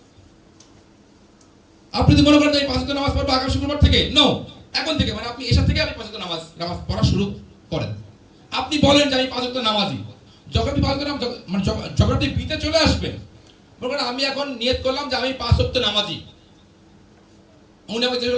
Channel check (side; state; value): both; identical; correlation 1.00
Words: আপনি যদি মনে করেন যে 5 ওয়াক্ত নামাজ পড়বো আগামী শুক্রবার থেকে, নো, এখন থেকে, মানে আপনি এসব থেকে আপনি 5 ওয়াক্ত নামাজ পড়া শুরু করেন। আপনি বলেন যে আমি 5 ওয়াক্ত নামাজি। যখন আপনি 5 ওয়াক্ত নামাজ মানে যখন আপনি বিতে চলে আসবেন, মনে করেন আমি এখন নিয়ত করলাম যে আমি 5 ওয়াক্ত নামাজি। উনি আমাকে জিজ্ঞেস